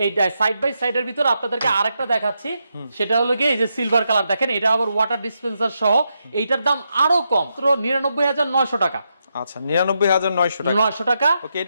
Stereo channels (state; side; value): inverted; both; correlation -0.83